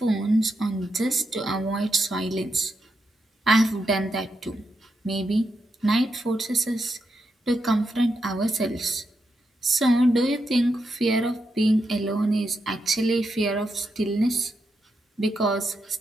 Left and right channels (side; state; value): both; normal; correlation 0.84